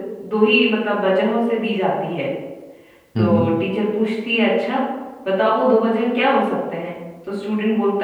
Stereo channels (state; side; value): identical; both; correlation 1.00